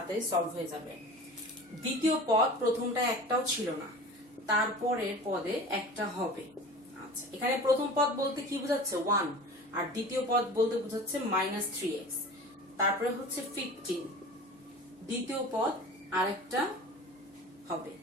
সলভ হয়ে যাবে। দ্বিতীয় পদ প্রথমটা একটাও ছিল না, তারপরের পদে একটা হবে। আচ্ছা, এখানে প্রথম পদ বলতে কি বোঝাচ্ছে? 1, আর দ্বিতীয় পদ বলতে বোঝাচ্ছে -3x। তারপরে হচ্ছে 15, দ্বিতীয় পদ আরেকটা হবে।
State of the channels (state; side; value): normal; both; correlation 0.38